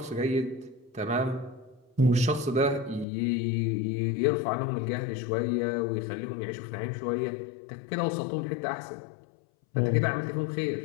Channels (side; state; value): right; drops out; at 3.1 s